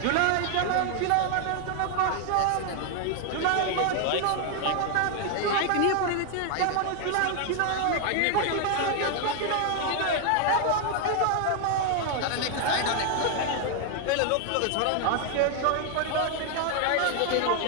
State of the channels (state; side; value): different; both; correlation 0.00